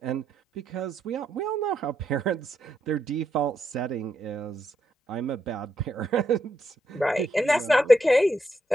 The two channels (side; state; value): both; normal; correlation 0.80